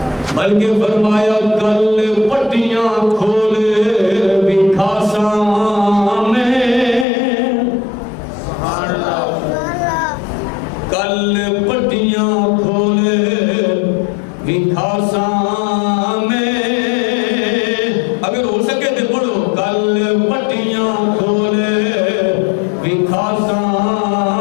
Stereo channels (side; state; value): right; drops out; at 7.1 s